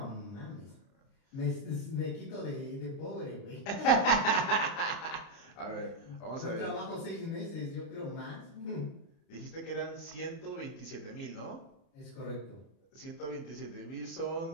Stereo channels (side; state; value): right; late; 30 ms